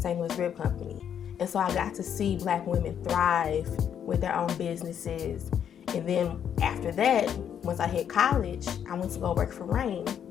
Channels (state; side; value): quieter; right; 8.8 dB